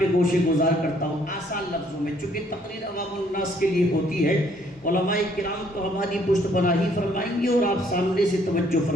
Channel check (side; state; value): both; normal; correlation 0.65